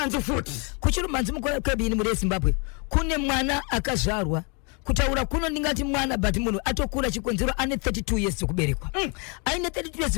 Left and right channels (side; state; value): right; quieter; 34.0 dB